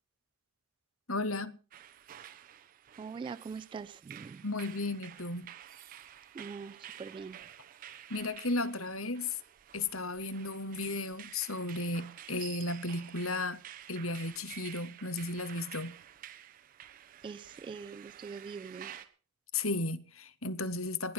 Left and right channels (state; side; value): normal; both; correlation 0.22